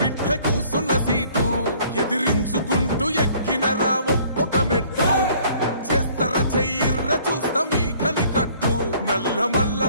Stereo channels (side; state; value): both; inverted; correlation -0.57